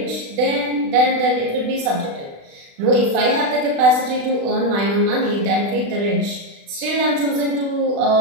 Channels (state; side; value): late; left; 36 ms